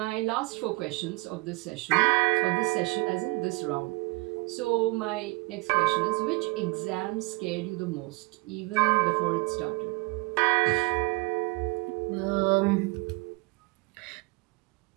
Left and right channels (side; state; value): left; quieter; 25.2 dB